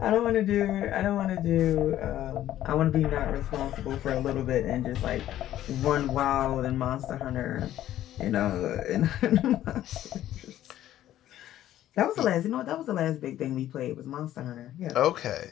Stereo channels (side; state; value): right; quieter; 12.8 dB